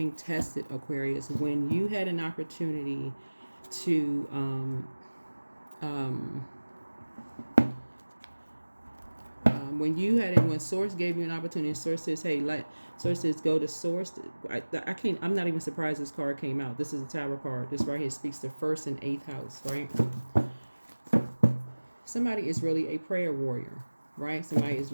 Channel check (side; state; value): both; inverted; correlation -1.00